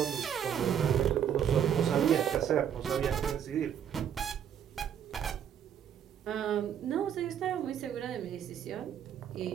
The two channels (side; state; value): left; quieter; 9.0 dB